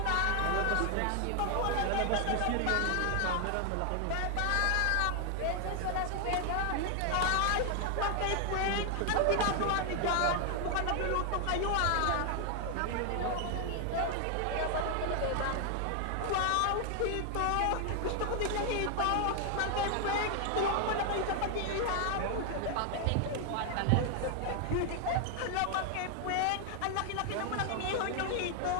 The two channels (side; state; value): both; different; correlation 0.00